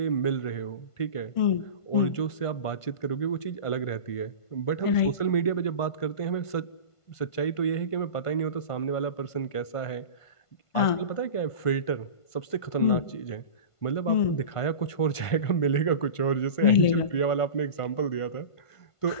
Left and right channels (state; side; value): late; right; 1.5 ms